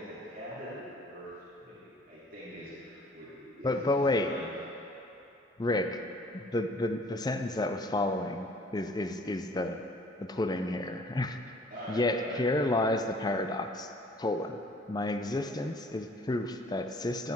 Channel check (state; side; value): normal; both; correlation 0.54